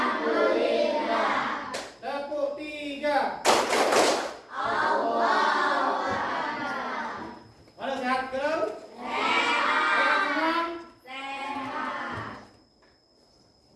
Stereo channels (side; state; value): both; identical; correlation 1.00